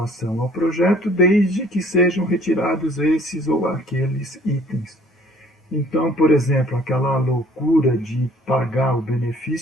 ao projeto, desde que sejam retirados esses ou aqueles itens. Então, por exemplo, aquela loucura de pagar o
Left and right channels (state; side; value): normal; both; correlation 0.56